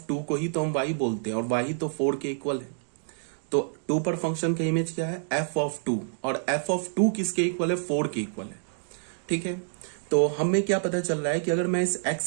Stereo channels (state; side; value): silent; left; digital silence